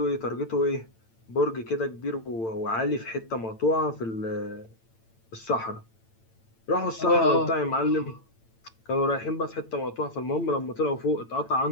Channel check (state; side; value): late; right; 8.9 ms